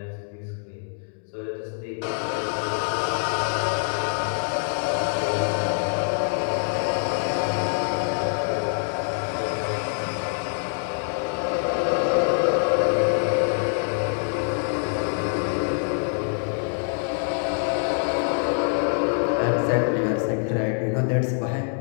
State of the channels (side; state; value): right; silent; 56 dB below the other